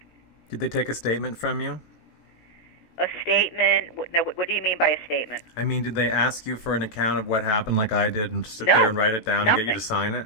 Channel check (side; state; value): right; late; 18 ms